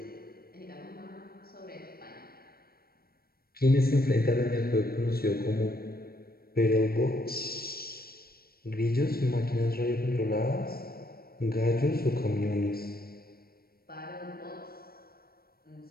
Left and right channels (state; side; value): late; right; 0.44 ms